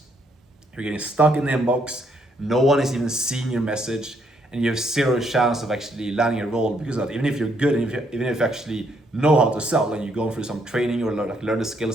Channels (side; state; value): both; normal; correlation 0.72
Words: You're getting stuck in the inbox, no one is even seeing your message, and you have zero chance of actually landing a role because of that. Even if you're good, and even if you actually know how to sell and you're going through some training or learn the skill